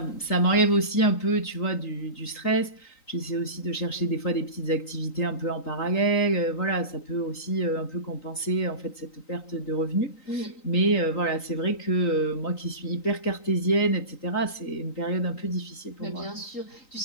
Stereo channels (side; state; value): right; late; 3.9 ms